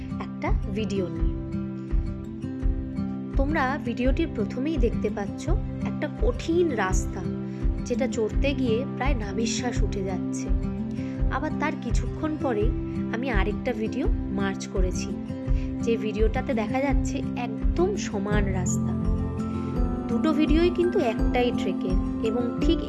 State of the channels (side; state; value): both; identical; correlation 1.00